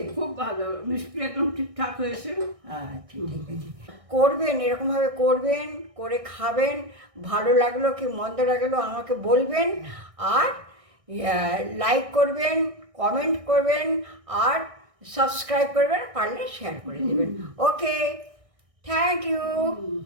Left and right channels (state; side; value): late; left; 1.6 ms